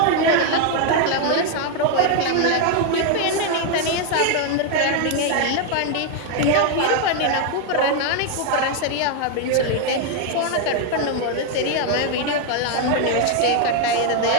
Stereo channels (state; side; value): different; both; correlation 0.01